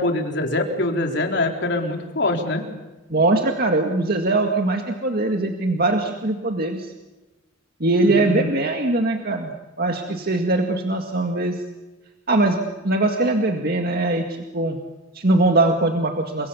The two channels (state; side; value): normal; both; correlation 0.24